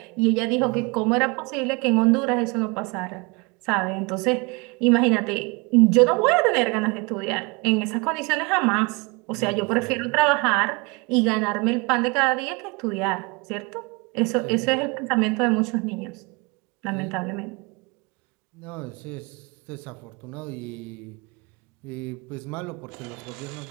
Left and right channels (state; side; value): quieter; left; 28.2 dB